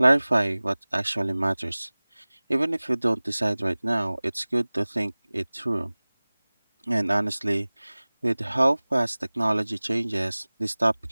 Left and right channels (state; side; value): inverted; both; correlation -1.00